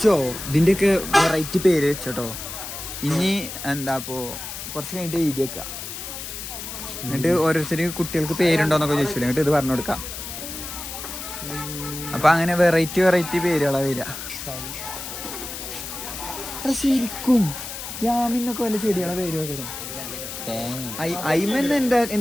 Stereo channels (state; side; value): noise; left; hiss, 8 dB below the sound